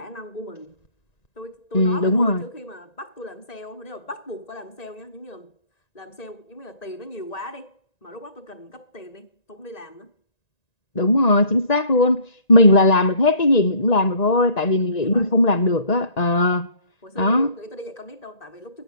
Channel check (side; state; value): right; late; 1.9 ms